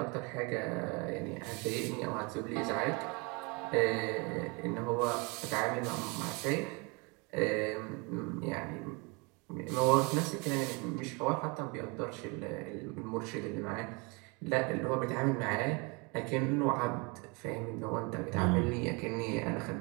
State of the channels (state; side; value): quieter; left; 29.7 dB